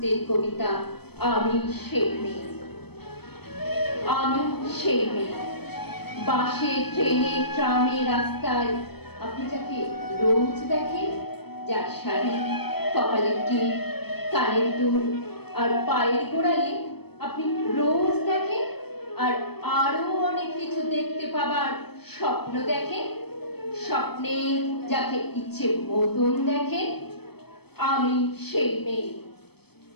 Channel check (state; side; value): late; right; 0.97 ms